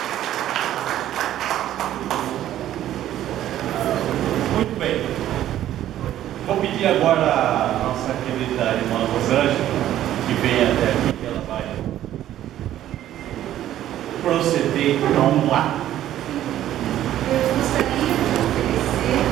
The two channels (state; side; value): quieter; left; 12.4 dB